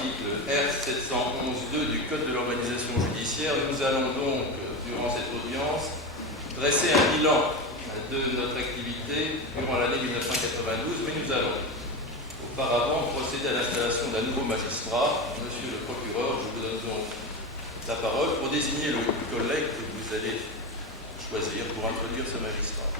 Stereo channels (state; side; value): normal; both; correlation 0.20